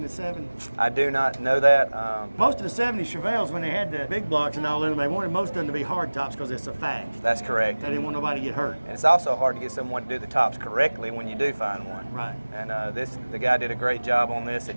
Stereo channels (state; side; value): inverted; both; correlation -1.00